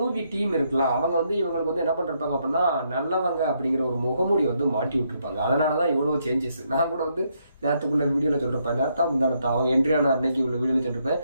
டீம் இருக்குல்ல, அவங்க இவங்களுக்கு என்ன பண்ணிருப்பாங்க அப்படின்னா, நல்லவங்க அப்படிங்கிற ஒரு முகமூடி மாட்டி விட்டுருப்பாங்க. அதனாலதான் இவ்வளவு சேஞ்சஸ். நான் கூட நேரத்துக்குள்ள வீடியோல சொல்லிருப்பேன், நேரத்தா முந்தானத்தா அவங்க என்ட்ரியான அன்னைக்கு உள்ள வீடியோல சொல்லிருப்பேன்.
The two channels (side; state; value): both; inverted; correlation -0.76